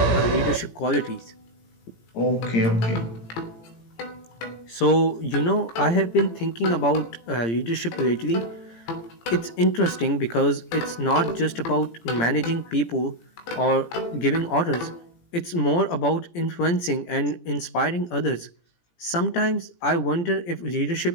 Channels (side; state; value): right; late; 17 ms